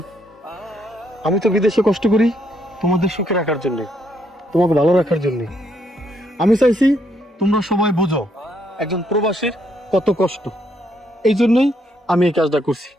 আমি তো বিদেশে কষ্ট করি তোমাদের সুখে রাখার জন্য, তোমাকে ভালো রাখার জন্য। আমি চাইছি তোমরা সবাই বোঝো একজন প্রবাসীর কত কষ্ট। এই জন্যই আমি এই কাজটা করছি।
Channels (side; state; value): both; normal; correlation 0.73